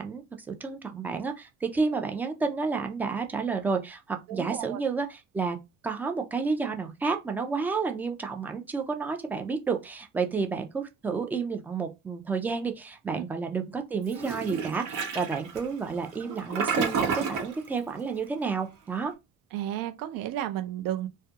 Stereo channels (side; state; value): left; quieter; 4.9 dB